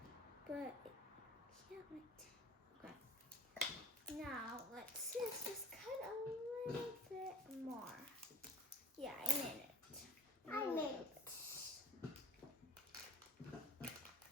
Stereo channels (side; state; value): both; normal; correlation 0.43